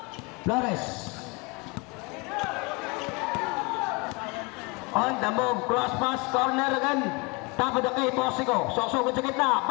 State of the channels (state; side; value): quieter; right; 28.6 dB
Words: Flores. On the move, cross pass, corner again. Top of the kay Bosico. Susugod sa gitna,